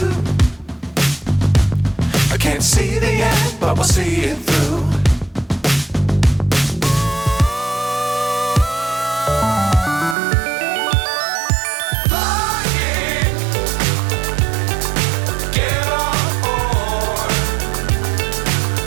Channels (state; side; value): drops out; left; at 10.2 s